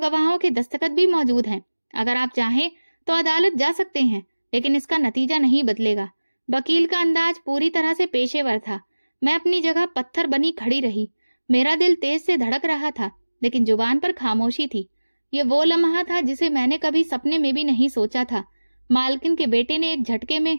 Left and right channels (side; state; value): both; inverted; correlation -1.00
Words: के दस्तखत भी मौजूद हैं। अगर आप चाहें तो अदालत जा सकते हैं, लेकिन इसका नतीजा नहीं बदलेगा। वकील का अंदाज पूरी तरह से पेशेवर था। मैं अपनी जगह पत्थर बनी खड़ी रही। मेरा दिल तेज से धड़क रहा था, लेकिन जुबान पर खामोशी थी। ये वो लम्हा था जिसे मैंने कभी सपने में भी नहीं सोचा था। मालकिन के बेटे ने एक झटके में